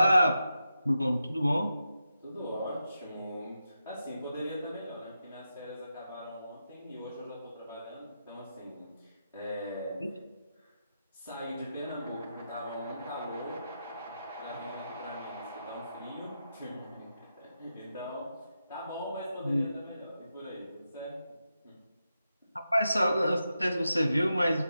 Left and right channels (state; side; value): inverted; both; correlation -0.88